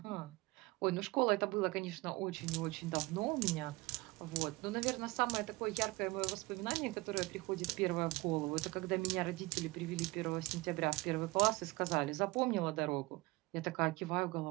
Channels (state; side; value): quieter; left; 22.7 dB